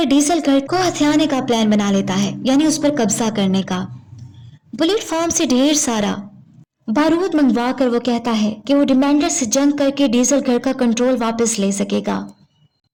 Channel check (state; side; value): identical; both; correlation 1.00